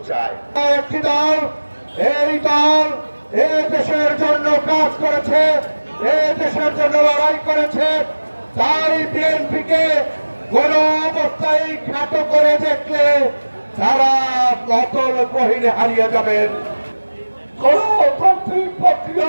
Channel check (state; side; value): inverted; both; correlation -1.00